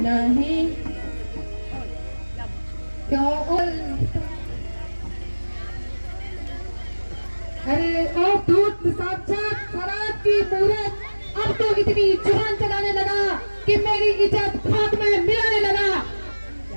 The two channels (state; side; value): inverted; both; correlation -1.00